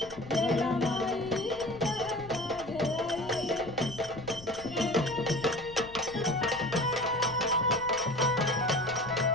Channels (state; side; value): noise; left; rumble, 18 dB below the sound